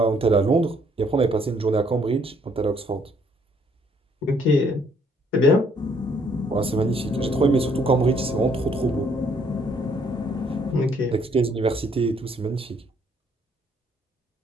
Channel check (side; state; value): both; normal; correlation 0.66